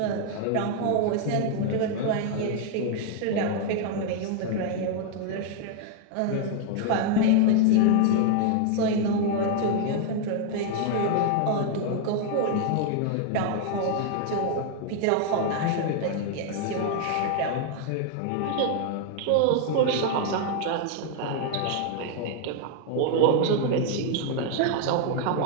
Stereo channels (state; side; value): different; both; correlation 0.00